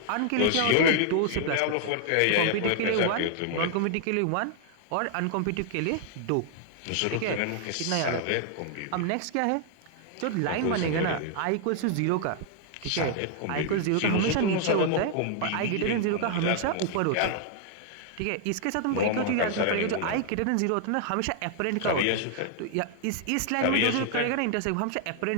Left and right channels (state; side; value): different; both; correlation 0.00